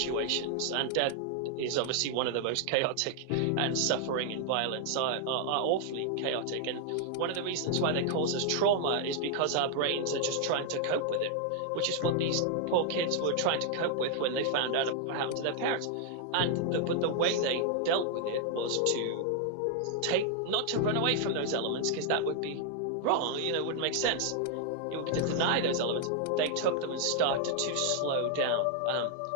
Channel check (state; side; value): different; both; correlation 0.00